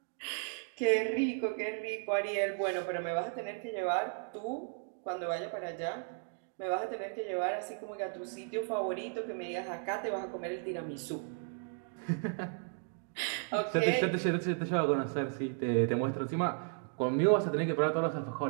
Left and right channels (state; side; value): silent; left; 55 dB below the other